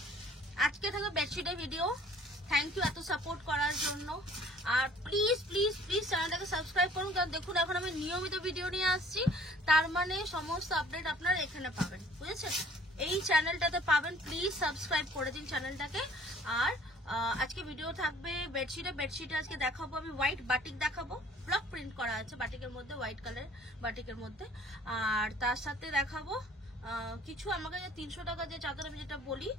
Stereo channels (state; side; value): normal; both; correlation 0.53